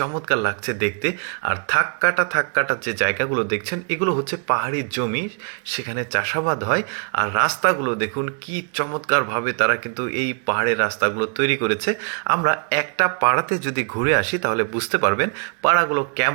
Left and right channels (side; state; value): left; quieter; 39.9 dB